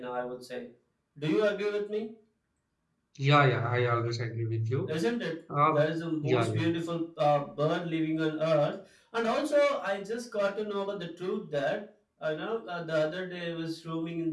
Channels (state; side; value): identical; both; correlation 1.00